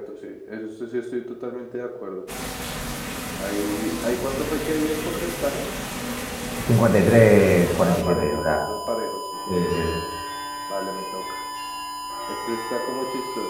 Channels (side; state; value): both; identical; correlation 1.00